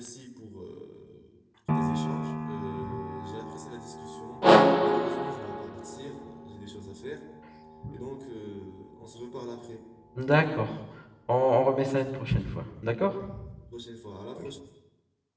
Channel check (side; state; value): both; identical; correlation 1.00